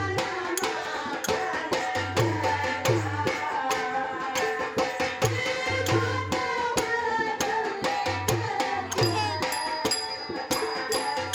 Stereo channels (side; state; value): both; identical; correlation 1.00